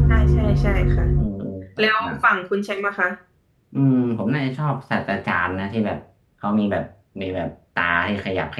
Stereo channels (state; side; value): identical; both; correlation 1.00